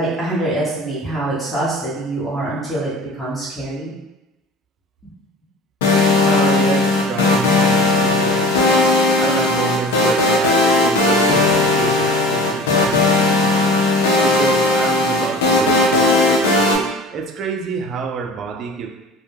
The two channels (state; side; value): normal; both; correlation 0.40